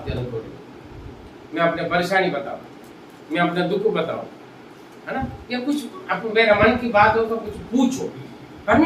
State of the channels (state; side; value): identical; both; correlation 1.00